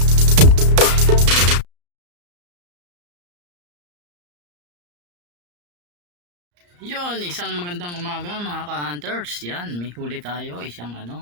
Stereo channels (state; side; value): late; left; 34 ms